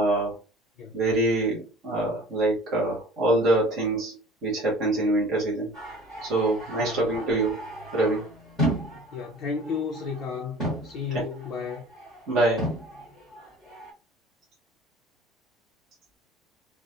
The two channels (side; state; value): both; normal; correlation 0.46